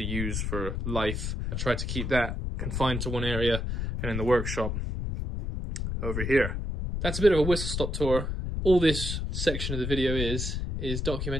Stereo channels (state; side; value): noise; left; rumble, 2 dB below the sound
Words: use for life. I try to keep that confined to one area, and in the workshop over here. That's a bit of a whistle-stop tour. All this section of the video is